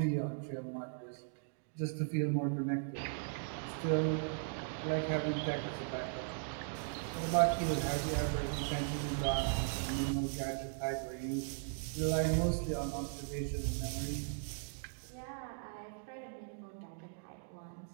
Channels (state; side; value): silent; left; digital silence